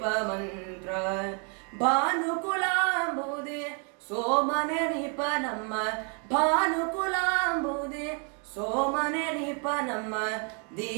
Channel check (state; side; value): quieter; left; 38.9 dB